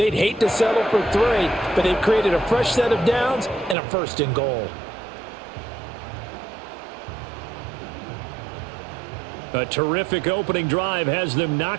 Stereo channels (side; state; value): left; drops out; at 3.8 s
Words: hate to settle for 3, but they've created a fresh set of downs and a 1st and goal. A terrific opening drive has them